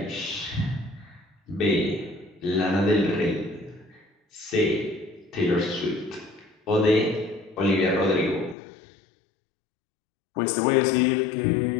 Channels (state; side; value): drops out; right; at 8.6 s